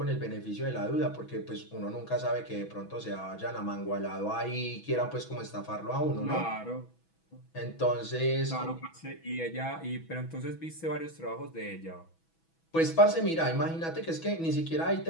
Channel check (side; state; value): right; late; 6.1 ms